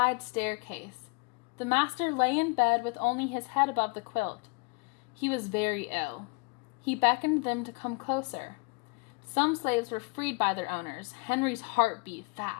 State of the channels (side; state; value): right; quieter; 31.2 dB